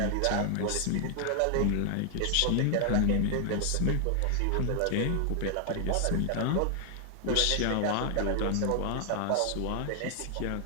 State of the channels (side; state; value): both; different; correlation 0.00